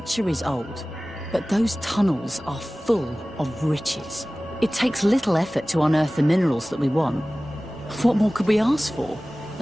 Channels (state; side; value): normal; both; correlation 0.98